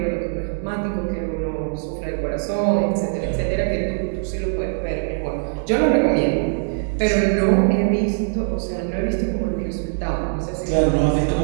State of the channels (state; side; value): silent; left; digital silence